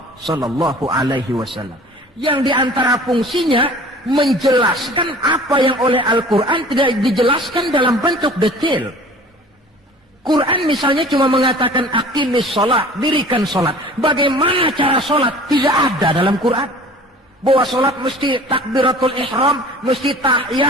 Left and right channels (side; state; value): both; normal; correlation 0.45